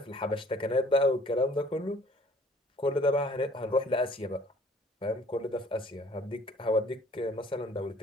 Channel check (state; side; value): normal; both; correlation 0.56